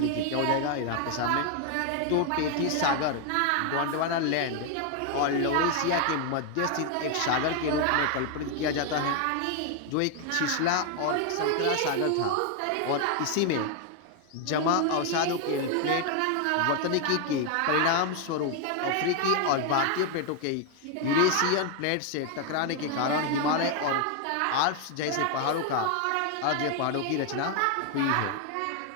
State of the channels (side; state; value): both; different; correlation 0.01